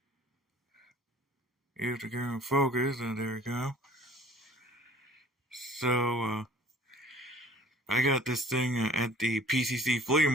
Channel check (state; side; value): normal; both; correlation 0.51